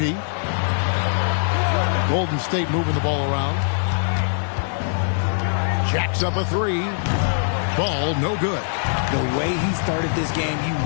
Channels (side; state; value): right; silent; digital silence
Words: Golden State moving the ball around. Jacks up a three. Ball no good. The way he started this game, you